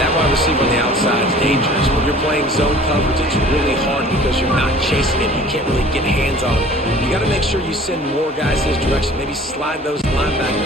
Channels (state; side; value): normal; both; correlation 0.48